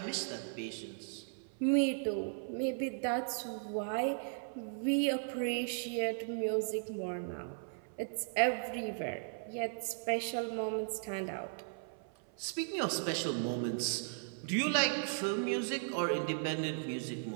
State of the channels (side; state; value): left; silent; 53 dB below the other